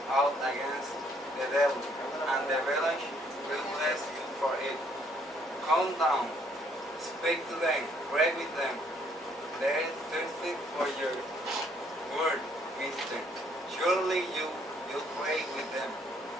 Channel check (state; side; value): normal; both; correlation 0.66